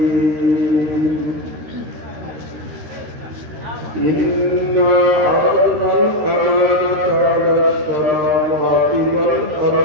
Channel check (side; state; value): left; late; 13 ms